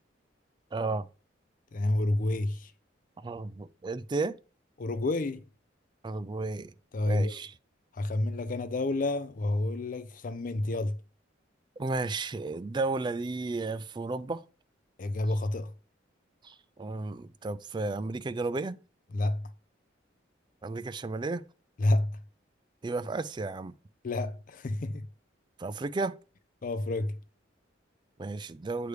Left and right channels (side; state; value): both; normal; correlation 0.69